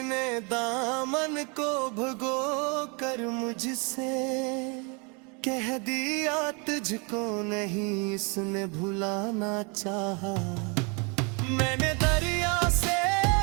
ने दामन को भगो कर मुझसे कह दिया तुझको नहीं इसने भुलाना चाहा। मैंने दरिया से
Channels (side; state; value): left; quieter; 33.0 dB